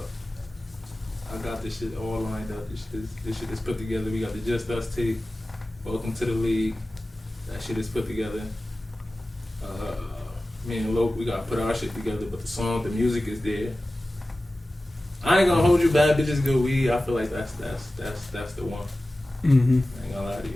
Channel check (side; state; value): both; normal; correlation 0.96